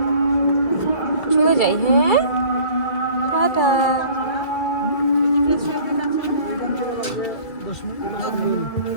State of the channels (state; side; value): late; right; 2.3 ms